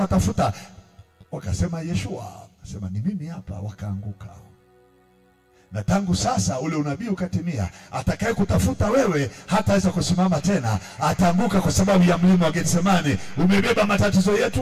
Wakasema Yeshua, akasema ni mimi hapa. Wakaanguka. Na tangu sasa ule unabii ukatimia, atakaye kutafuta wewe hataweza kusimama tena, ataanguka kwa sababu ya mlima wa Getsemani. Umebeba matatizo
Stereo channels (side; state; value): both; identical; correlation 1.00